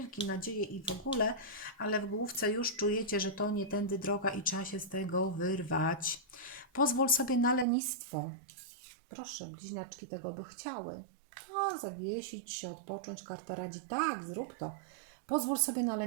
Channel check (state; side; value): drops out; left; at 7.7 s